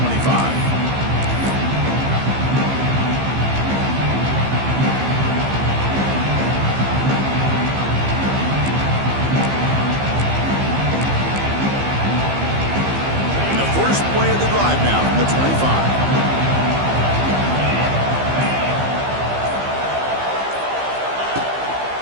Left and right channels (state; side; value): late; left; 15 ms